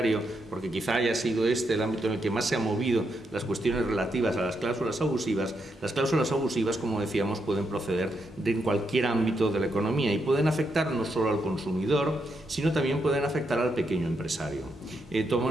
porque quizá haya sido este el ámbito en el que más se han movido las cuestiones relativas a las cláusulas abusivas, como decíamos, pueden proceder de cualquier ámbito de la economía y pueden afectar no solo al consumidor, sino también pueden afectar al pequeño empresario.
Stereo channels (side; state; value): both; normal; correlation 0.81